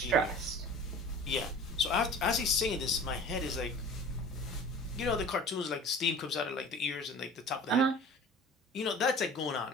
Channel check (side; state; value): both; normal; correlation 0.42